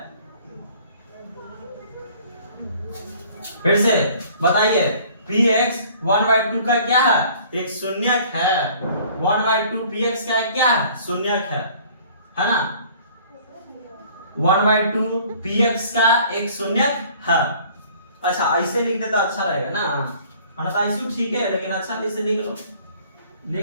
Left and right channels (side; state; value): both; inverted; correlation -0.53